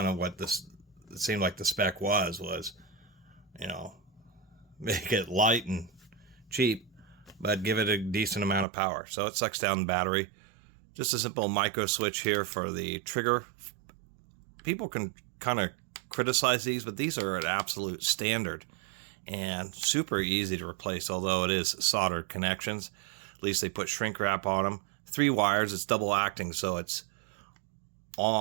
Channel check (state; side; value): drops out; left; at 8.7 s